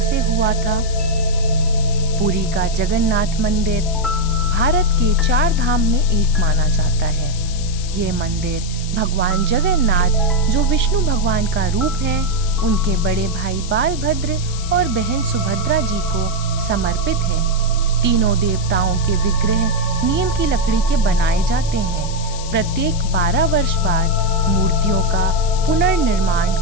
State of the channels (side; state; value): left; noise; hiss, 12 dB below the sound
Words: हुआ था। पुरी का जगन्नाथ मंदिर भारत के 4 धाम में एक माना जाता है। ये मंदिर भगवान जगन्नाथ, जो विष्णु भगवान का रूप है, उनके बड़े भाई बालभद्र और बहन सुभद्रा जी को समर्पित है। तीनों देवताओं के विग्रह नीम की लकड़ी के बनाए जाते हैं। प्रत्येक 12 वर्ष बाद मूर्तियों का पुनर्निर्माण